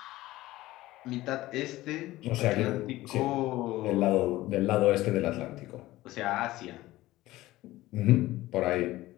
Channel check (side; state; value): right; quieter; 17.2 dB